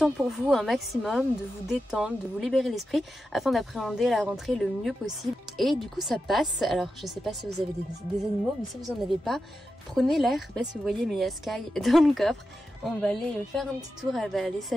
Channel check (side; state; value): both; normal; correlation 0.90